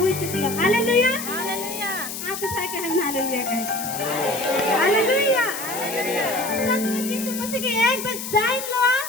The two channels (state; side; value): noise; left; hiss, 7 dB below the sound